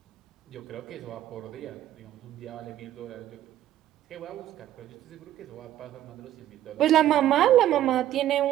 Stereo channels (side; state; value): left; quieter; 12.6 dB